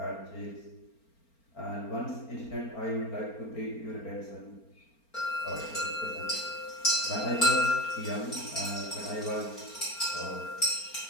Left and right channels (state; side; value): late; right; 4.4 ms